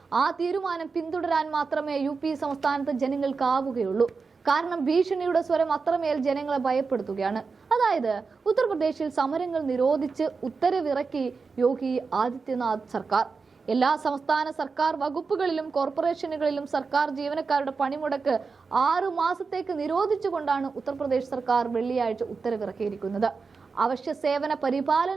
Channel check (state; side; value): quieter; left; 4.7 dB